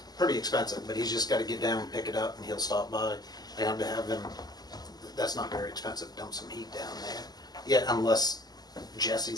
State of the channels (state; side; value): late; right; 0.20 ms